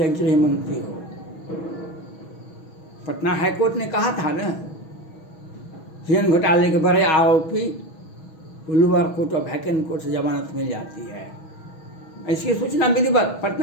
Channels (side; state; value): right; late; 6.2 ms